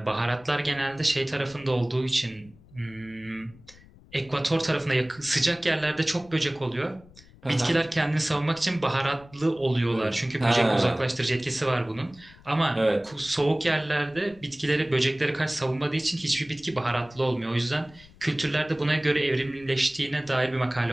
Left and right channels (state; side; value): noise; left; rumble, 24 dB below the sound